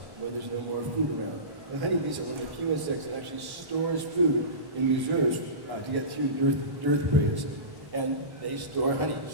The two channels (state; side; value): late; left; 1.1 ms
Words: where there's no more food around. The honeybees are one of the few insects that actually stores food in reserves to get through dearth periods. And they store honey.